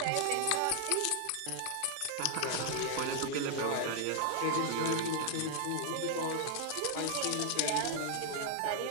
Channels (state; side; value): different; both; correlation 0.00